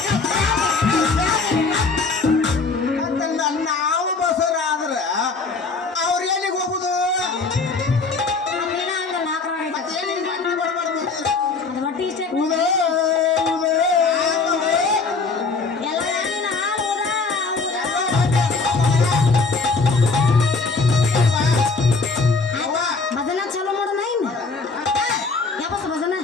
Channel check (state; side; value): quieter; right; 4.2 dB